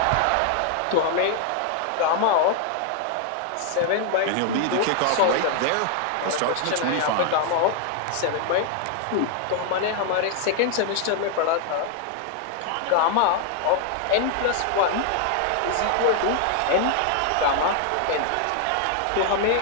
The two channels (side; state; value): both; different; correlation 0.00